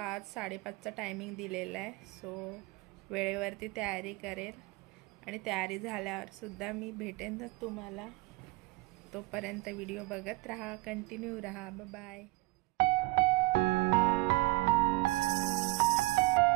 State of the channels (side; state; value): left; quieter; 22.5 dB